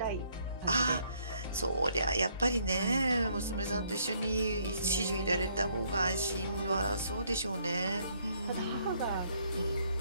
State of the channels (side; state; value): both; inverted; correlation -0.68